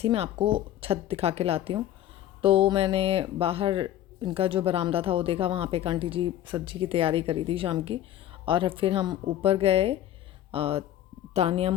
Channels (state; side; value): quieter; right; 12.2 dB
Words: मैं आपको छत दिखा के लाती हूँ। तो मैंने बाहर इनका जो बरामदा था वो देखा। वहाँ पे एक आंटी जी सब्जी की तैयारी करी थी शाम की। और फिर हम ऊपर गए। तानिया